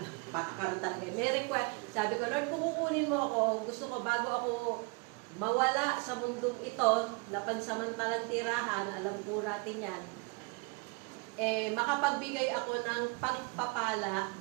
talaga. May request. Sabi ko, Lord, kung kukunin mo ako, gusto ko bago ako mawala sa mundong ito, na pansamantalang tirahan, alam po natin yan, makapagbigay ako ng pagpapala,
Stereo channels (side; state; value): left; quieter; 29.8 dB